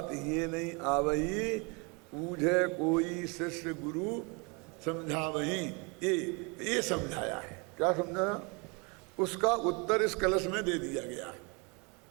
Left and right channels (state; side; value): quieter; left; 30.6 dB